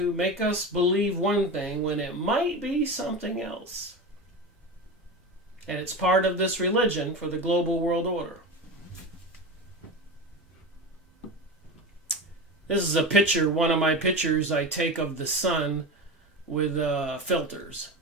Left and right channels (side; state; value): both; normal; correlation 0.25